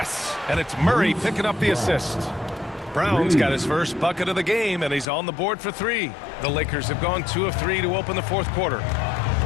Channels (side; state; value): right; drops out; at 5.1 s